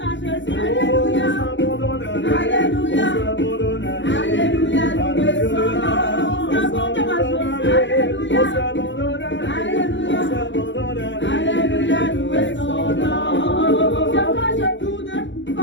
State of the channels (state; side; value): late; right; 0.54 ms